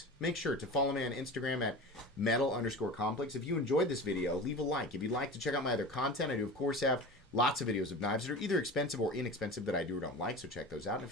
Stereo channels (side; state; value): both; normal; correlation 0.33